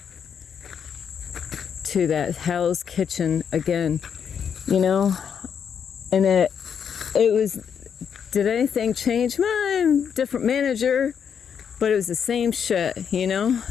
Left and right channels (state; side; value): quieter; right; 7.5 dB